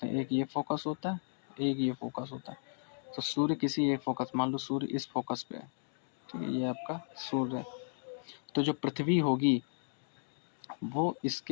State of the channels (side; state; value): right; silent; digital silence